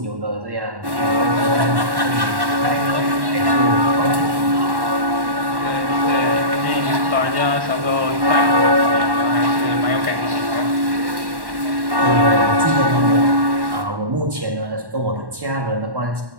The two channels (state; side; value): late; left; 1.1 ms